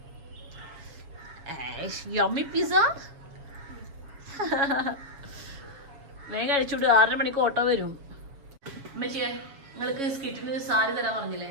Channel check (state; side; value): late; left; 7.2 ms